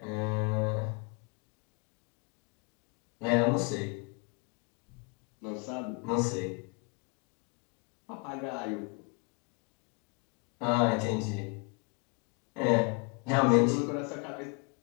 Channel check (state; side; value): quieter; right; 31.9 dB